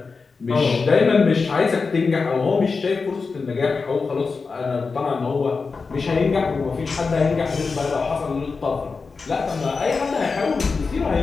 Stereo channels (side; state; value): right; quieter; 4.6 dB